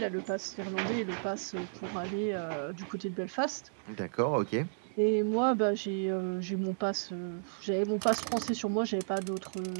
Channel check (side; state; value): left; silent; digital silence